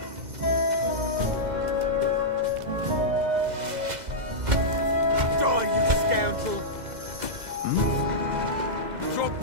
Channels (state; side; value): late; left; 2.0 ms